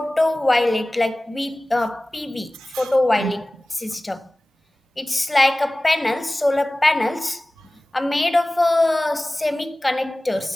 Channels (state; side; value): normal; both; correlation 0.98